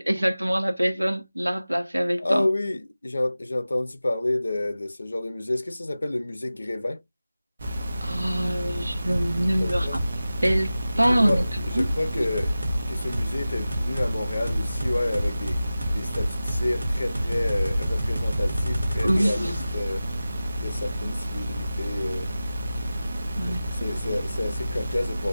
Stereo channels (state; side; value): inverted; both; correlation -0.95